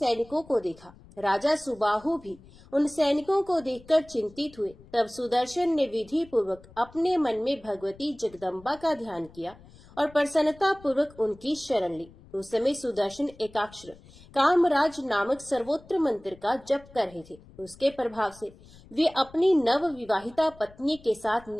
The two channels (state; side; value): noise; left; rumble, 23 dB below the sound